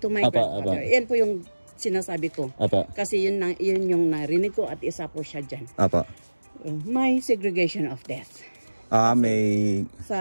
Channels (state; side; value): inverted; both; correlation -1.00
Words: my grandfather, yan po yung sinasabi ko. Kasi yun yung narinig ko at isa po siya dyan. May segregation of death. May